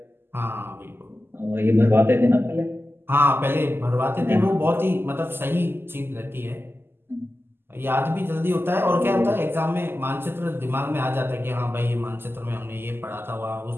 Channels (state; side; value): late; left; 0.11 ms